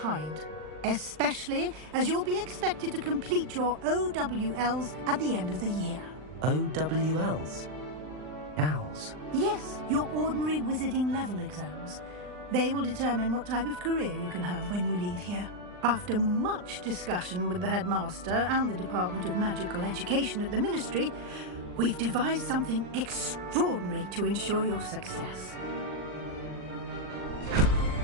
Especially as you'll be expected to complete your OWLs at the end of the year. OWLs? Owls? Yes, your ordinary wizarding level exams. They will determine what type of career you can have when you leave here. After much discussion with the headmaster and the Department of Magical Education at the Ministry, we've devised something extraordinary to ensure your success.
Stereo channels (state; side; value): late; left; 39 ms